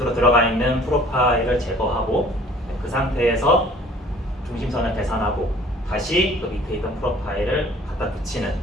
들어가 있는 프로파일을 제거하고 그 상태에서 중심선을 계산하고 다시 그 밑에 있던 프로파일을 갖다 붙이는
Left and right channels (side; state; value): both; normal; correlation 0.52